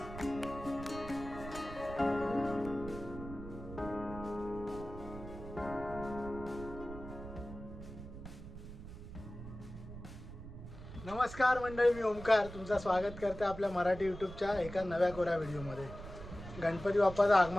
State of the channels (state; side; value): noise; right; rumble, 12 dB below the sound